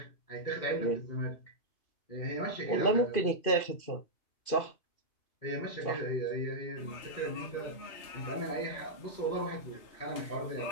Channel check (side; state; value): right; late; 2.5 ms